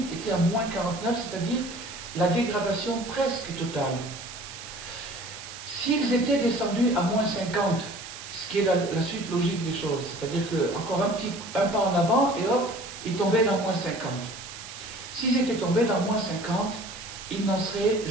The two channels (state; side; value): noise; right; hiss, 12 dB below the sound